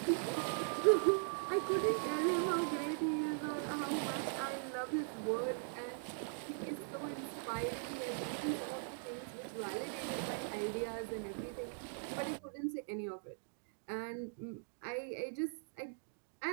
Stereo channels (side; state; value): left; silent; digital silence